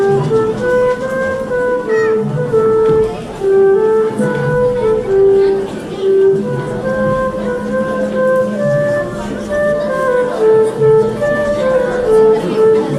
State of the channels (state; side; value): identical; both; correlation 1.00